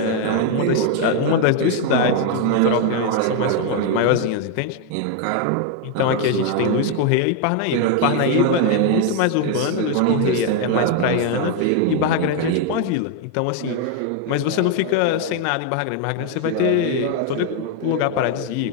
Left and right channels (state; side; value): different; both; correlation 0.01